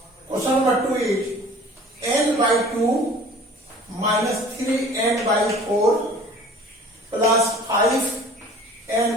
Question number 2 is n by 2 minus 3n by 4 plus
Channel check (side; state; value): both; normal; correlation 0.47